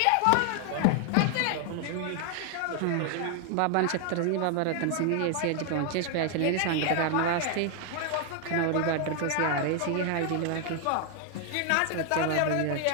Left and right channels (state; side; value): different; both; correlation 0.00